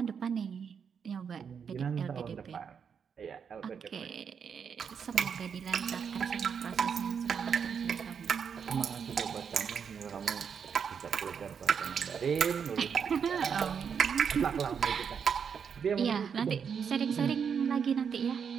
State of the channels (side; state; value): left; quieter; 6.9 dB